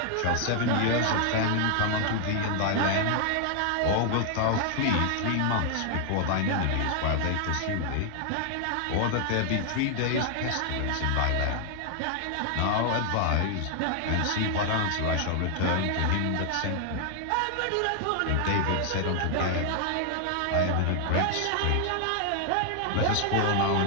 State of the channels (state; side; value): different; both; correlation 0.00